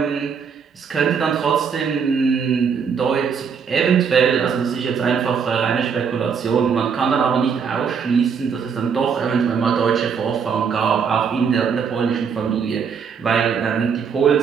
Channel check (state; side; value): quieter; left; 6.4 dB